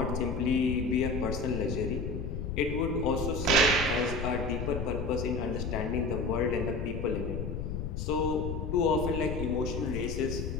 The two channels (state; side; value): noise; left; rumble, 3 dB below the sound